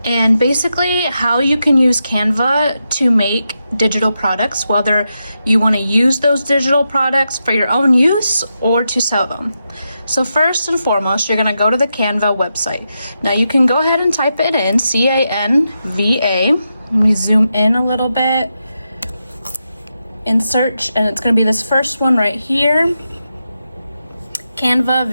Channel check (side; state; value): both; inverted; correlation -0.87